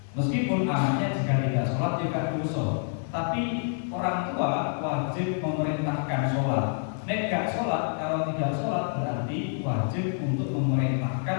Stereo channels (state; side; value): silent; right; 60 dB below the other